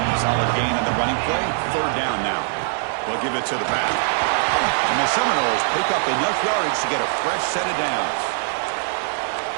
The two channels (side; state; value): left; silent; 64 dB below the other